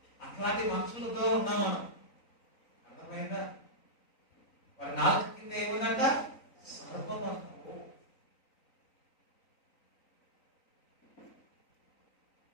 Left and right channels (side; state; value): right; late; 3.9 ms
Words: మనుషులతో ఉన్నాం మనం. అర్థమైందా? వారి నాలుక కింద ఏముందంట? సర్పం అంట.